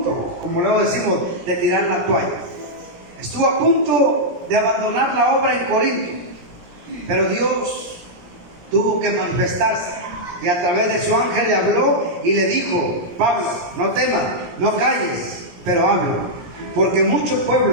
como luego decimos, de tirar la toalla. Estuvo a punto de abandonar la obra en Corinto, pero Dios tuvo que manifestarse y a través de su ángel le habló y le dijo: Pablo, no temas, no calles, pero habla, porque mucho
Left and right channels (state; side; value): late; left; 17 ms